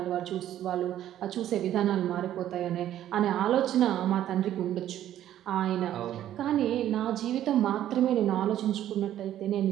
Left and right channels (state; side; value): quieter; left; 11.9 dB